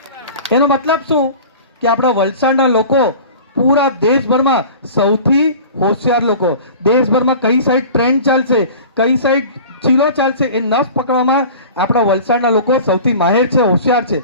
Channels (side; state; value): both; inverted; correlation -0.40